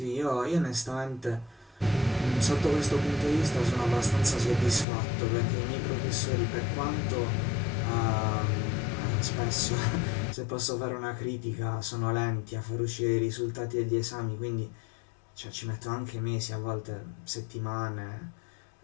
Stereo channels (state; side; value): drops out; right; at 4.9 s